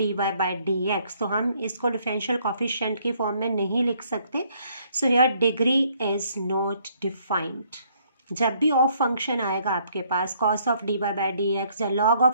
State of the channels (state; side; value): inverted; both; correlation -0.66